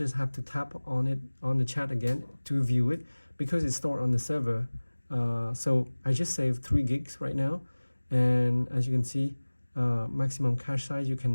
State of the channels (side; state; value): both; inverted; correlation -1.00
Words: have to tap on it on the chat again to view it because it's stored on the server. So I just saved 3 gigs right now, and as you can see, maximum cache size, you